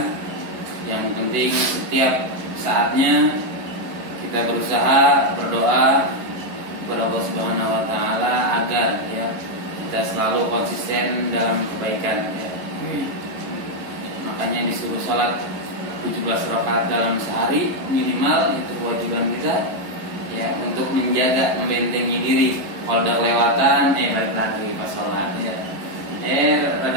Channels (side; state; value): left; late; 11 ms